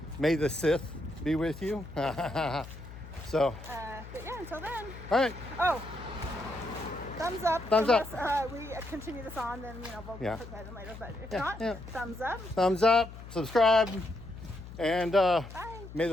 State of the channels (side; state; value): left; noise; hum, 14 dB below the sound